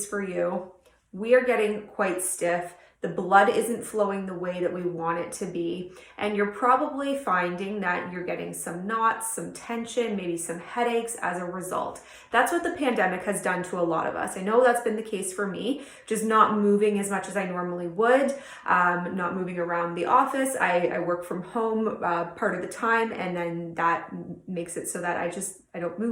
for you, we are getting quite stiff. The blood isn't flowing the way that we want it to be. And you're probably finding that you're getting some knots, some tension, maybe some headaches as a result. That's what the pandemic has done to a lot of us. I know that's been the case for me, just not moving as much as I normally would, not moving around the office. I work from home part of the time, and then that makes it so that I don't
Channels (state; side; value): identical; both; correlation 1.00